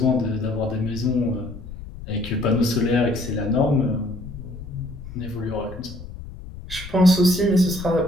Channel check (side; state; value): left; noise; rumble, 13 dB below the sound